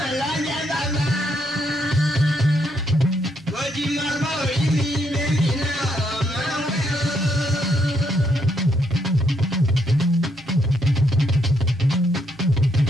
lọ́jọ́ bàbá. Mọ̀jì máa gbé orí mi bẹ́ẹ̀ni náà ọmọ ìwé o.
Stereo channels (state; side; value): normal; both; correlation 0.75